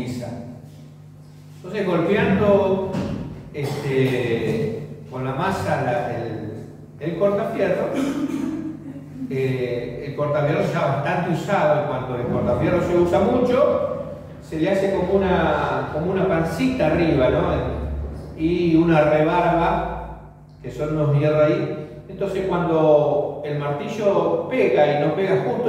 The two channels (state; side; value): identical; both; correlation 1.00